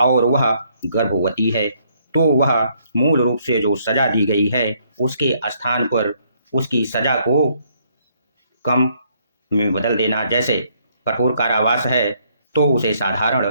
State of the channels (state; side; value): inverted; both; correlation -0.69